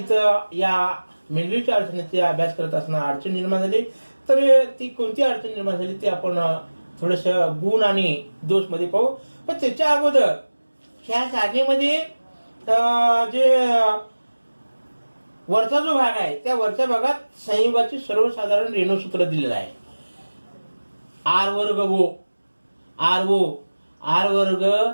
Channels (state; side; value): inverted; both; correlation -1.00